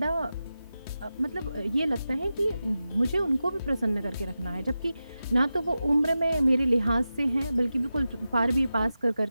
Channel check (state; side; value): inverted; both; correlation -0.93